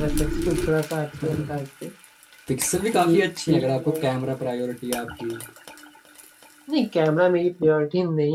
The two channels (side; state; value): both; identical; correlation 1.00